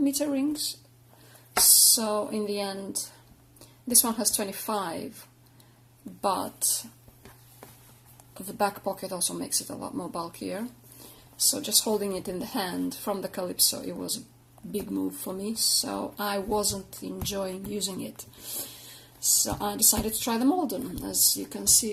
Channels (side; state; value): both; identical; correlation 1.00